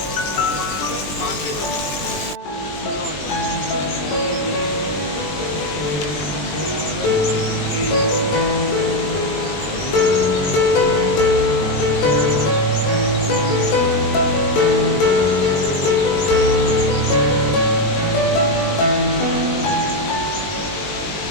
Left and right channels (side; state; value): right; late; 20 ms